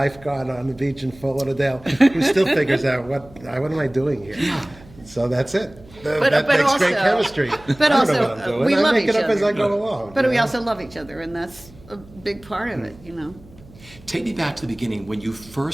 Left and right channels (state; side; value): noise; right; hum, 23 dB below the sound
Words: on the beach in Fort Lauderdale who still figures out what am I doing here. Yeah. So that's it. But that makes great also- chemistry. But I don't also, know what I'm doing. we I love make each it up as other. I go along. But you we know? also love each other, and that's a big part of it. Take me back to the beginning when you